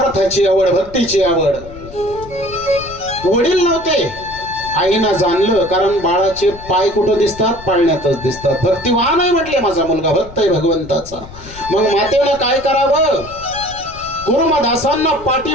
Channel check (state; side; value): noise; left; rumble, 17 dB below the sound